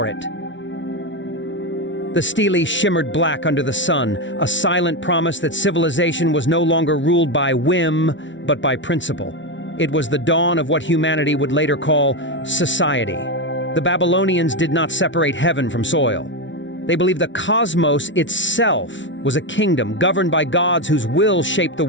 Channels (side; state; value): right; late; 0.55 ms